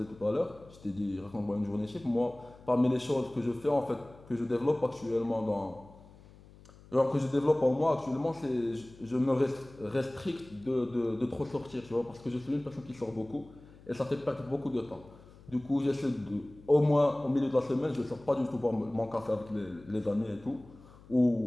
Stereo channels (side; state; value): left; noise; hum, 22 dB below the sound